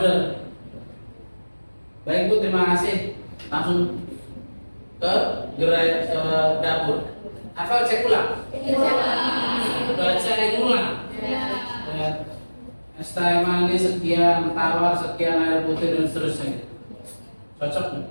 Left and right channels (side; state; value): both; inverted; correlation -1.00